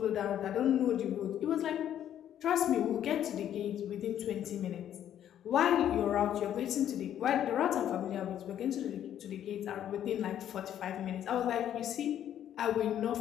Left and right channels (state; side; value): quieter; right; 10.6 dB